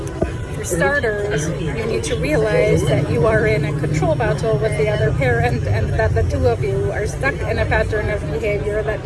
For starters, you need to realize that you are in a control battle with the other parent and that the two of you are stuck in a pattern of behavior that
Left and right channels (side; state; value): both; identical; correlation 1.00